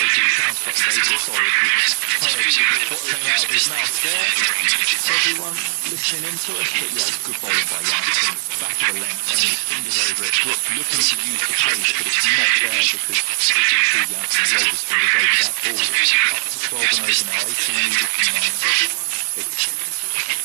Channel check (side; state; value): left; silent; 59 dB below the other